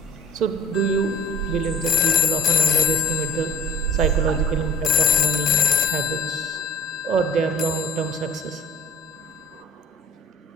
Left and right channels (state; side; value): normal; both; correlation 0.45